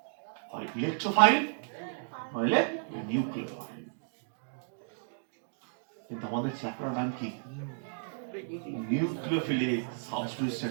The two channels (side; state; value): left; silent; digital silence